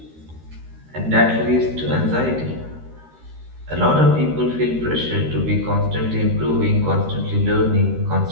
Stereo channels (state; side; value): late; left; 13 ms